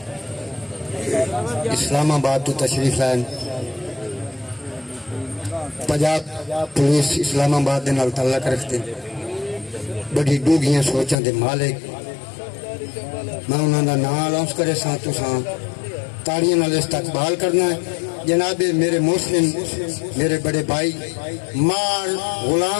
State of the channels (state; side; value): drops out; right; at 11.2 s